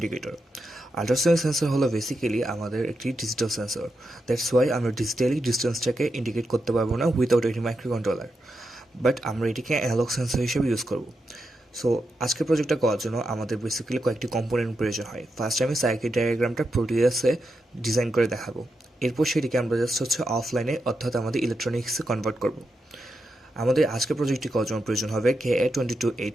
আল্ট্রাসনিক সেন্সর হলো বেসিক্যালি আমাদের একটি ডিজিটাল সেন্সর। দ্যাটস ওয়াই আমরা ডিজিটালি ডিস্টেন্সটাকে ইন্ডিকেট করতে পারবো না উইথাউট এটি মাইক্রো কন্ট্রোলার, বাট আমরা এটিকে অ্যানালগ সেন্সর হিসেবে ইউজ করব। সো আজকের প্রজেক্টটা করার জন্য আমাদের বেসিক্যালি কয়েকটি কম্পোনেন্ট প্রয়োজন হয়। ফার্স্ট আমি সার্কিট ডায়াগ্রামটা প্রোটিয়াসে ডিজাইন করে দেখাবো। এরপর সেটিকে আমরা জাস্ট অফলাইনে অর্থাৎ আমাদের ইলেকট্রনিক্সে কনভার্ট করব। আমাদের আজকের প্রজেক্টটি করার জন্য প্রয়োজন হবে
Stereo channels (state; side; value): normal; both; correlation 0.86